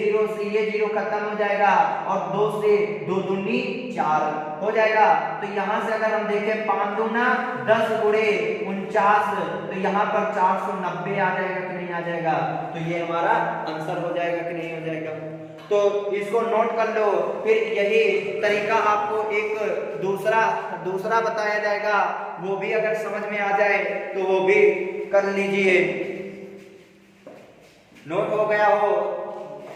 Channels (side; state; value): both; identical; correlation 1.00